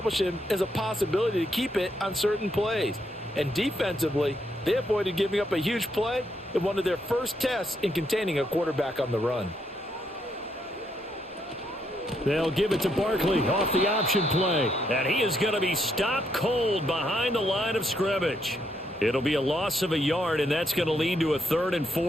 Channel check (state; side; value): normal; both; correlation 0.76